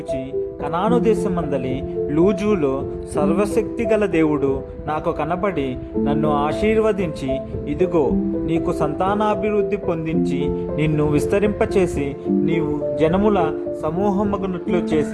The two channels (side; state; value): both; identical; correlation 1.00